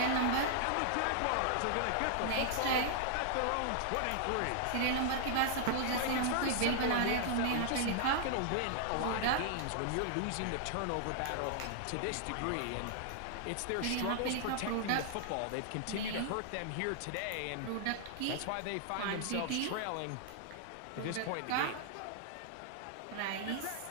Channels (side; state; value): both; different; correlation -0.01